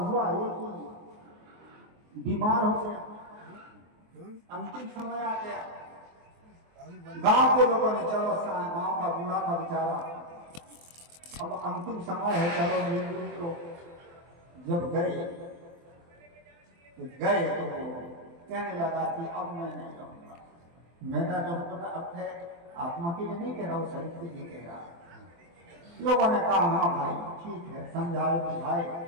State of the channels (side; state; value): left; late; 23 ms